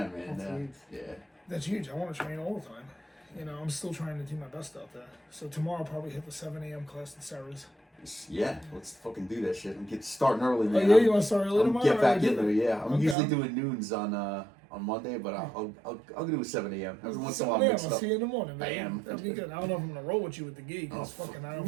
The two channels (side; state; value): left; drops out; at 13.2 s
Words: man. That's huge. Yeah. That's huge. I want to train all the time. I'm still trying to do my best out there. So tomorrow I'll probably hit the 7 a.m. class at Sarah's. Yeah, let's fucking do that shit. I'm starting early, man. Oh, yeah, you want to start early tomorrow? Get back in there, yeah. I'm usually doing noons on on Monday, but I'll do a 7 a.m. Every once in a while, I'll mix it up. see you in the morning, man. I am. That'll be good. I don't know if I'm gonna roll with you with the gi because fucking I don't